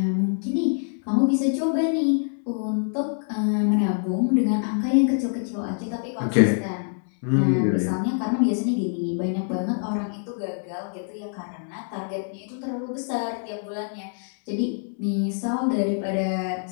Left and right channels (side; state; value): right; silent; digital silence